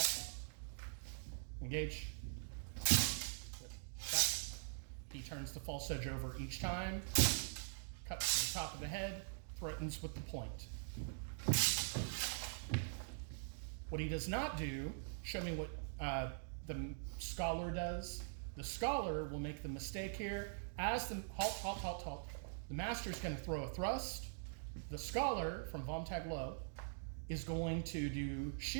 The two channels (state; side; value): silent; left; digital silence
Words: Engage. Good. Back. He turns the false edge over each time. Cuts to the top of the head, threatens with the point. What he does not do, show me what the scholar does. The scholar will make the mistake here. As the, halt. The master is going to throw a thrust. The scholar, from Vom Tag Low, is going to do